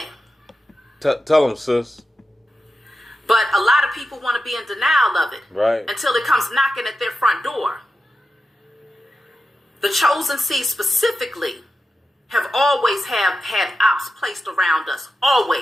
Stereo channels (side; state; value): both; normal; correlation 0.91